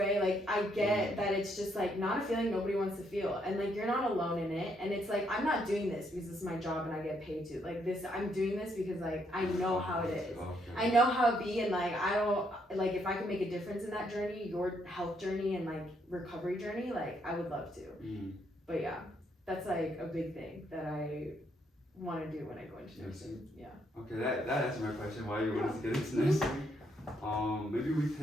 Like, I get that it's just like not a feeling nobody wants to feel. And like, you're not alone in it. And it's like, I'm not doing this because it's my job and I get paid to. Like, I'm doing this because like, I know how it is. I know how it be, and like, I don't, like, if I can make a difference in that journey, your health journey and like recovery journey, like, I would love to. But yeah, that's like a big thing that I want to do when I go into nursing. Yeah. Okay, that answered my question. Why you wanted to get into nursing? Maybe we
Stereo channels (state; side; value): normal; both; correlation 0.74